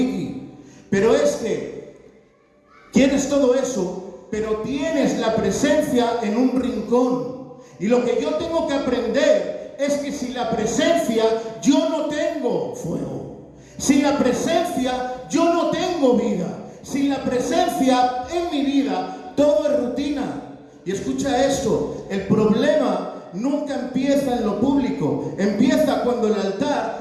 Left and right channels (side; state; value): both; identical; correlation 1.00